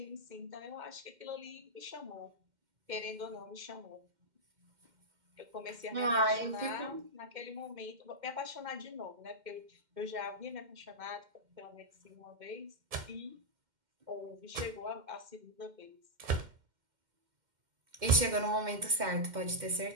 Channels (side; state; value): left; late; 2.1 ms